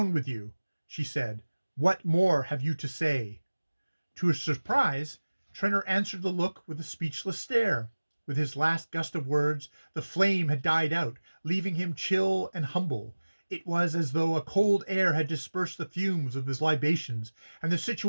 with you, she said. What more have you to say? To her surprise, Trenor answered the look with a speechless stare. With his last gust of words, the flame had died out, leaving him chill and humble. It was as though a cold air had dispersed the fumes of his libations, and the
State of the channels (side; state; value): both; inverted; correlation -1.00